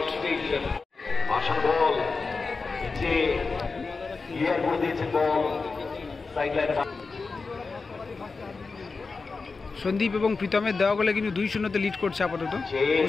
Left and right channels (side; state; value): right; quieter; 4.3 dB